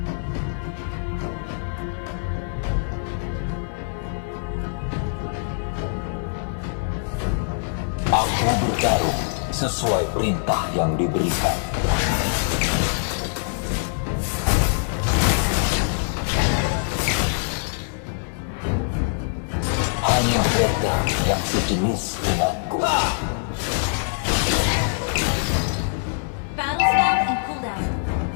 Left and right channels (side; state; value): right; silent; digital silence